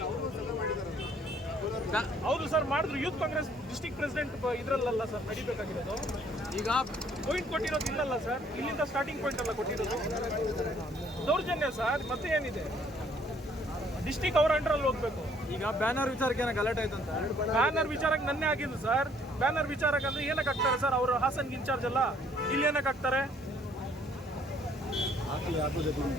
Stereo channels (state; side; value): normal; both; correlation 0.63